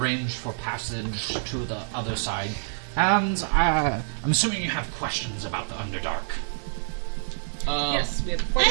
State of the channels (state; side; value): silent; left; digital silence